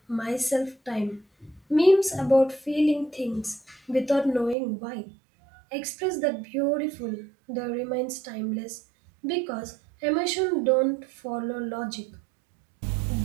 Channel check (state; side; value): drops out; left; at 4.5 s